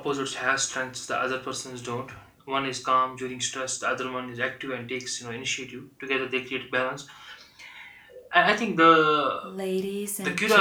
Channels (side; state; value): both; identical; correlation 1.00